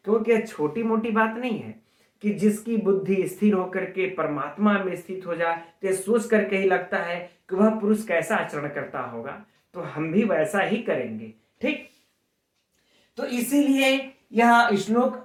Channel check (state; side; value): identical; both; correlation 1.00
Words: क्योंकि यह छोटी मोटी बात नहीं है कि जिसकी बुद्धि स्थिर होकर के परमात्मा में स्थित हो जाए तो सोच करके ही लगता है कि वह पुरुष कैसा आचरण करता होगा, तो हम भी वैसा ही करेंगे। ठीक, तो इसीलिए यह श्लोक